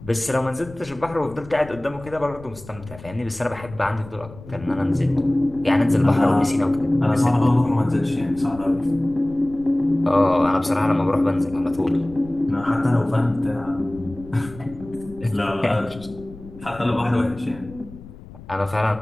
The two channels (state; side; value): noise; left; rumble, 18 dB below the sound